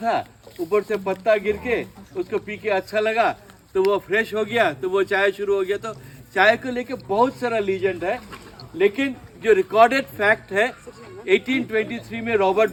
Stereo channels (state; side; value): identical; both; correlation 1.00